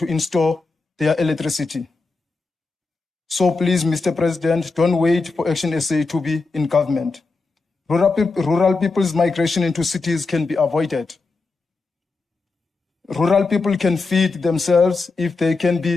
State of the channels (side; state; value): right; quieter; 3.8 dB